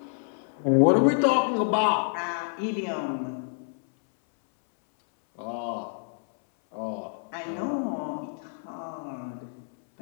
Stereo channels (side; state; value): right; silent; 60 dB below the other